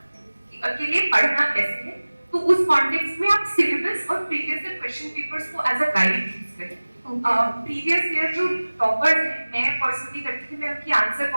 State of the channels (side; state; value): both; inverted; correlation -1.00